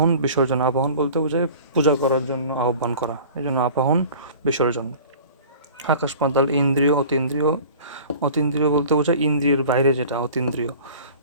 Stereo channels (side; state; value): both; inverted; correlation -0.43